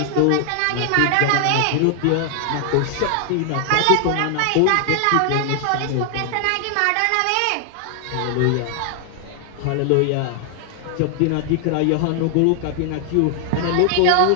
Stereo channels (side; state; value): both; different; correlation 0.00